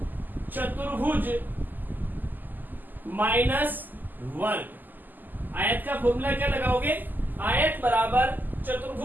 चतुर्भुज माइनस वर्ग। आयत का फॉर्मूला क्या लगाओगे, आयत बराबर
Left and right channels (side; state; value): left; late; 0.087 ms